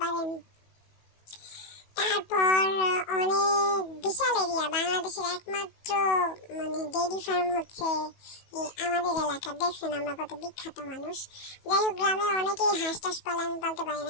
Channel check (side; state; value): right; late; 18 ms